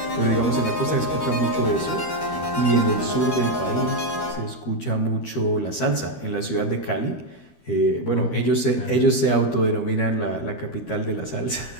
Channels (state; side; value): late; right; 13 ms